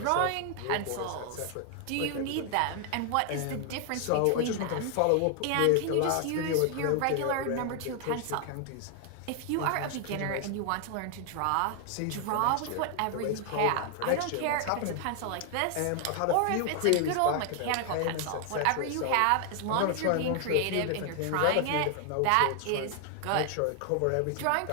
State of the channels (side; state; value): both; different; correlation 0.00